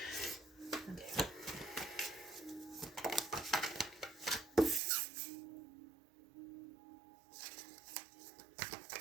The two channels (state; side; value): drops out; left; at 4.8 s